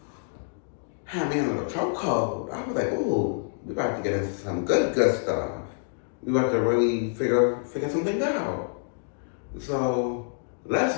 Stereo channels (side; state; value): right; silent; digital silence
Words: had me in a little chokehold. I was like, ooh, we about to get into some good stuff. We about to really figure some things out. So